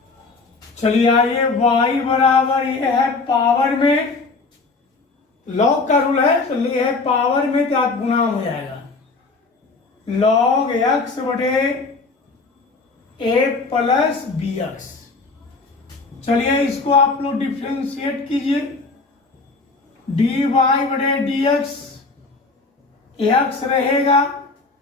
चलिए आइए, y बराबर ये है पावर में, लॉग का रूल है तो ये है पावर में तो आप गुना हो जाएगा, log x बटे a + bx। चलिए इसको आप लोग डिफ्रेंशिएट कीजिए, dy बटे dx, x रहेगा,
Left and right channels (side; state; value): right; quieter; 3.9 dB